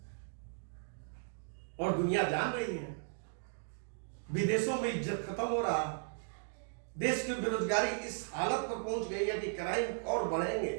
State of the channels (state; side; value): silent; left; digital silence